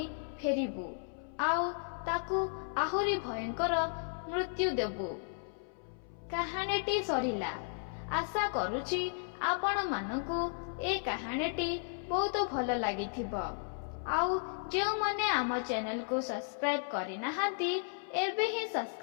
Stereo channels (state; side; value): silent; right; 55 dB below the other